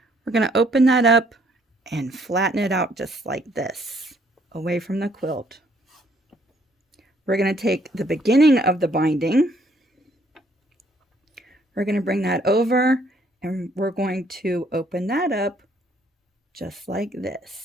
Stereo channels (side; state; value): both; normal; correlation 0.66